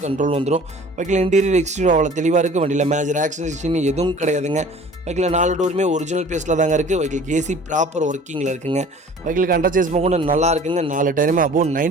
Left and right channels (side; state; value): both; normal; correlation 0.47